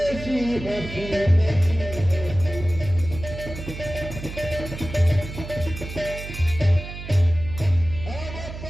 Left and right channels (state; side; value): noise; right; hum, 10 dB below the sound